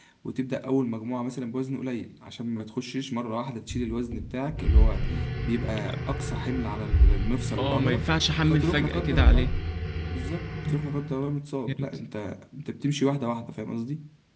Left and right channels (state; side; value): identical; both; correlation 1.00